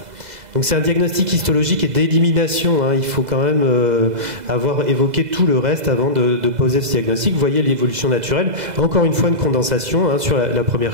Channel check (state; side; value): late; left; 2.0 ms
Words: Donc c'est un diagnostic histologique et d'élimination, hein. Il faut quand même avoir évoqué tout le reste avant de poser ce diagnostic. Vous voyez l'évolution naturelle. Encore une fois, une condensation, hein, sur la